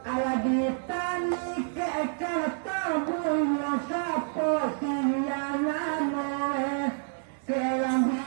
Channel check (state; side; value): silent; left; 59 dB below the other